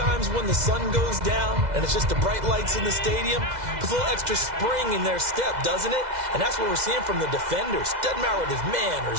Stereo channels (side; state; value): left; late; 2.0 ms